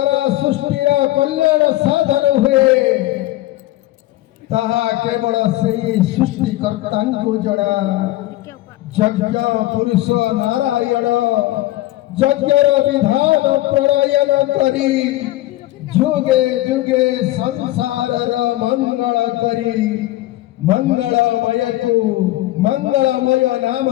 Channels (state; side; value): quieter; right; 16.7 dB